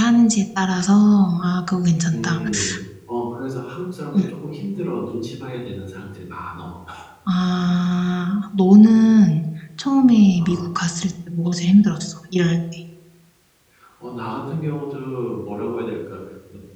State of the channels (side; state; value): both; identical; correlation 1.00